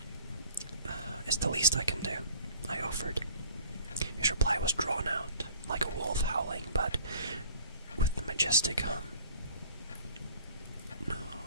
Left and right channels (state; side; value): inverted; both; correlation -0.50